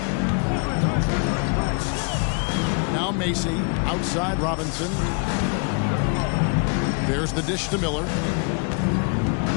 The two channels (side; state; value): right; quieter; 34.7 dB